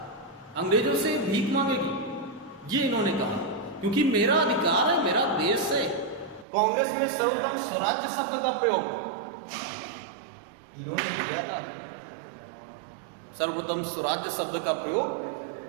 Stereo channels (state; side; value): drops out; left; at 6.5 s